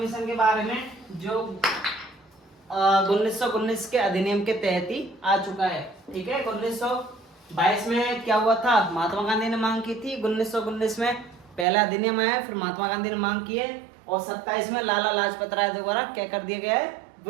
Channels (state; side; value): drops out; left; at 11.7 s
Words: के बारे में जो 1919 के अधिनियम के तहत ही आ चुका है। ठीक है, 1922 में क्या हुआ था? महात्मा गांधी ने मांग की थी। 1919 में पहला अधिनियम आया, फिर महात्मा गांधी ने मांग की है, और 27 में लाला लाजपत राय द्वारा क्या कर दिया गया है?